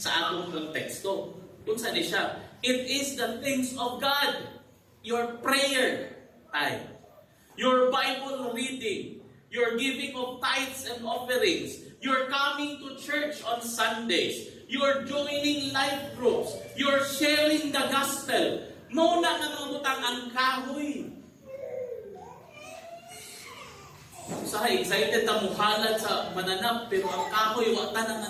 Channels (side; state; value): both; identical; correlation 1.00